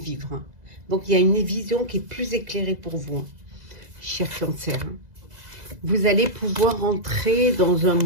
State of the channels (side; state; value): left; late; 2.0 ms